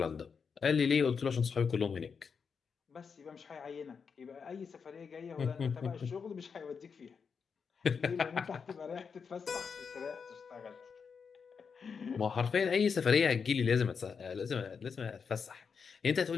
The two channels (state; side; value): quieter; right; 6.0 dB